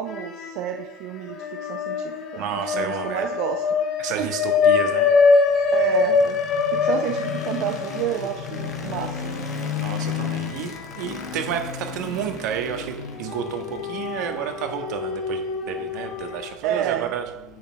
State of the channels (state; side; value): normal; both; correlation 0.40